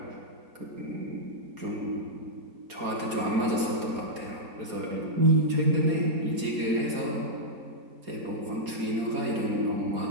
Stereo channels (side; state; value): left; late; 4.3 ms